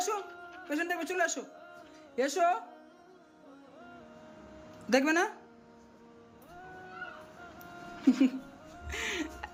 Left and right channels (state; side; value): identical; both; correlation 1.00